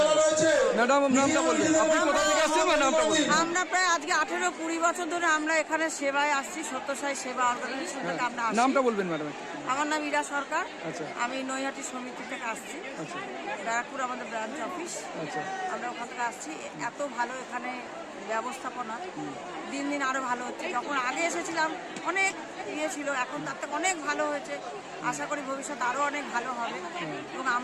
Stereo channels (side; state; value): both; identical; correlation 1.00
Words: ম্যাডাম, নামটা বলবেন, আপনি কোথা থেকে আসছেন? নামটা বলবেন। আমরা প্রায় আজকে 18-20 বছর ধরে আমরা এখানে সেবায় আসছি, সত্যসাই সেবা অর্গানাইজেশন থেকে আমরা আসছি। নামটা বলবেন ম্যাডাম। আমার নাম ইরা সরকার। আচ্ছা। আমি নৈহাটি সমিতি থেকে আসছি। আচ্ছা। ব্যারাকপুর আমাদের ব্রাঞ্চ অফিস। আচ্ছা। আমরা ওখান থেকে আসছি। এত ভালো এখানে ব্যবস্থাপনা, দিন দিন আরো ভালো হচ্ছে। যখন আগে এসেছিলাম অনেক ইয়ে ছিল, এখন তার থেকে অনেক ভালো হয়েছে। আশা করি ভবিষ্যতে আরো অনেক ভালো হবে এবং